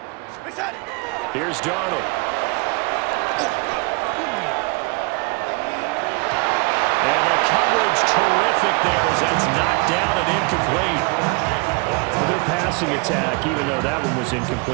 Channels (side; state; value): left; quieter; 29.5 dB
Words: Here's Darnold. And the coverage terrific there as that's knocked down and incomplete. Well, their passing attack, even though that one was